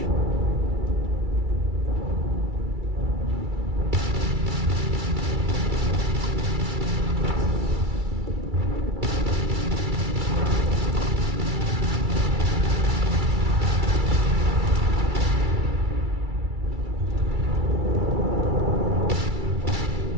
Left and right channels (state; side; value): late; left; 2.3 ms